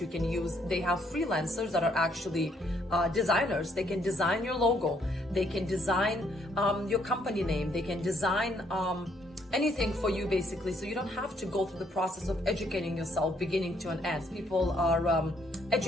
can use. They have freelancers that are actually designers. They can design your logo. They can design your company name. They can design anything for you basically. So you don't have to go through the process of educating yourself beginning to an end. People are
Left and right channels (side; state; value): both; normal; correlation 0.69